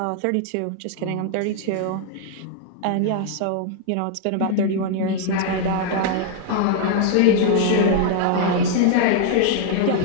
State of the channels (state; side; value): different; both; correlation 0.00